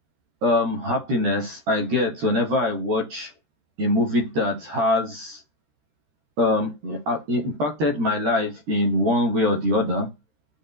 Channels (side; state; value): left; late; 13 ms